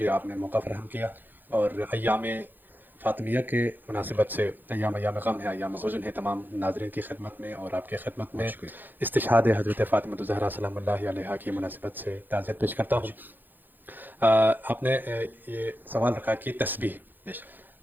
آپ نے موقع فراہم کیا، اور ایام فاطمیہ کے مناسبت سے ایام غم ہے، ایام حزن ہے، تمام ناظرین کی خدمت میں اور آپ کی خدمت میں استشہاد حضرت فاطمہ الزہرا سلام اللہ علیہا کی مناسبت سے تعزیت پیش کرتا ہوں۔ آپ نے یہ سوال رکھا کہ تسبیح،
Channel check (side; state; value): left; late; 0.089 ms